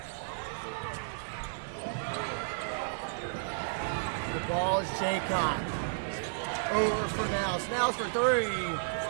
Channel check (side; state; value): left; silent; digital silence